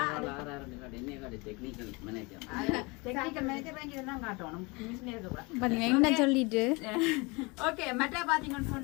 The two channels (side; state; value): right; quieter; 27.2 dB